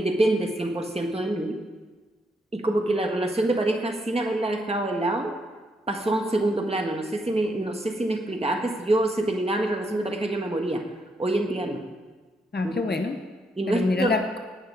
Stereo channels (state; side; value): normal; both; correlation 0.77